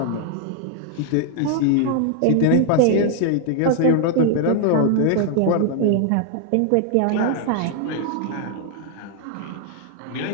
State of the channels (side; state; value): both; different; correlation 0.00